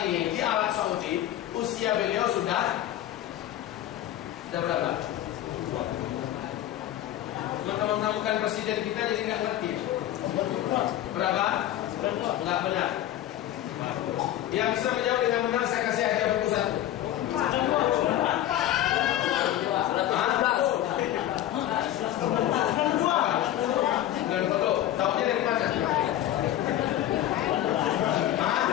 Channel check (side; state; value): right; quieter; 12.8 dB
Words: ini di Arab Saudi, usia beliau sudah berapa? Teman-teman bukan presiden kita jadi nggak ngerti. Berapa? Nggak benar. Yang bisa menjawab dengan benar saya kasih hadiah buku satu. Dan foto, tahunya dari mana?